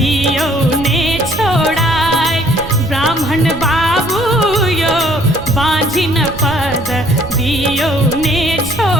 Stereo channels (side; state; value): right; noise; rumble, 13 dB below the sound